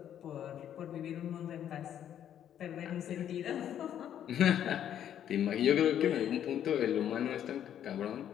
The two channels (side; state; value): right; quieter; 10.1 dB